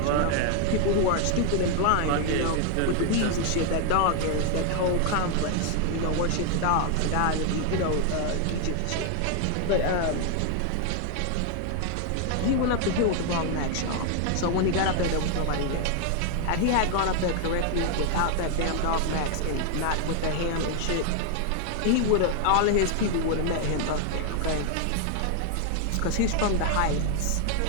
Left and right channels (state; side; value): different; both; correlation 0.00